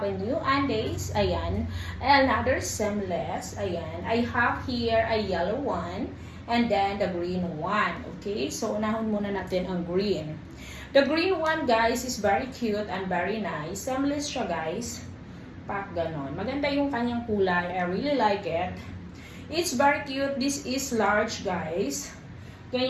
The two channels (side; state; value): both; identical; correlation 1.00